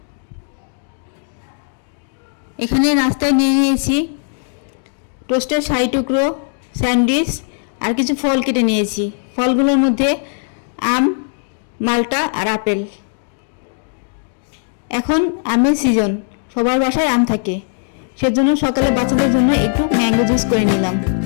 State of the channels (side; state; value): right; silent; digital silence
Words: এখানে নাস্তায় নিয়ে নিয়েছি টোস্টের শাহী টুকরো, স্যান্ডউইচ আর কিছু ফল কেটে নিয়েছি। ফলগুলোর মধ্যে আম, মালটা আর আপেল। এখন আমের সিজন, সবার বাসায় আম থাকে, সেজন্য সকালে বাচ্চাদের জন্য একটু ম্যাঙ্গো জুস করে নিলাম।